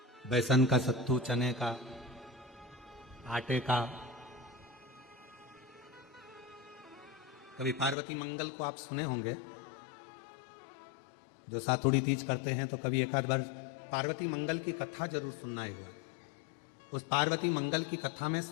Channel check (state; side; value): drops out; right; at 8.0 s